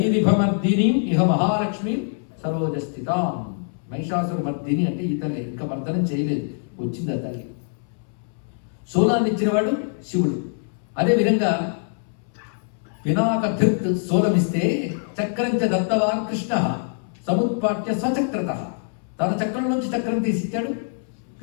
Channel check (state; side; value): silent; right; 63 dB below the other